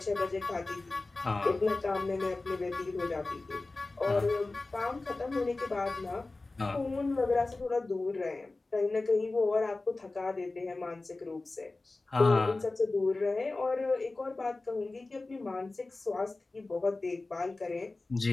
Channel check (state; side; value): quieter; right; 3.3 dB